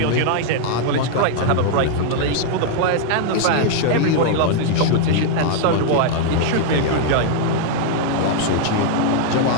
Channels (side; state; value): both; different; correlation 0.00